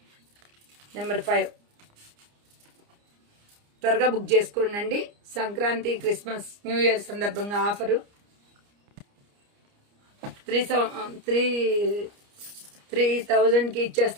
నెంబర్ 5. త్వరగా బుక్ చేసుకోండి అండి. సంక్రాంతి, క్రిస్మస్, న్యూ ఇయర్ సందర్భంగా ఆఫరు 3,000కి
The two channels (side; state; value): left; late; 29 ms